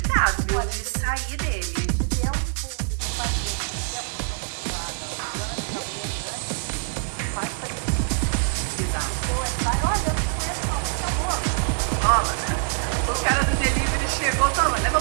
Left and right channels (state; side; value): silent; left; 57 dB below the other